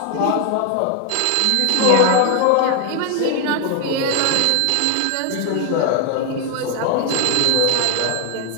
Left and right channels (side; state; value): both; different; correlation 0.01